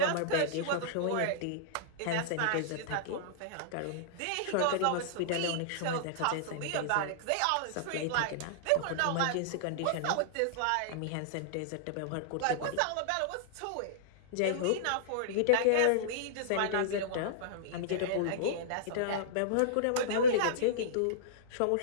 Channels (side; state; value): both; different; correlation -0.02